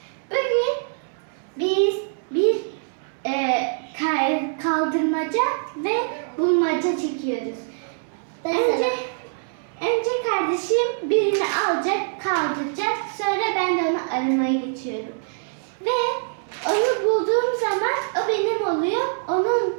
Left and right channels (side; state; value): left; silent; 63 dB below the other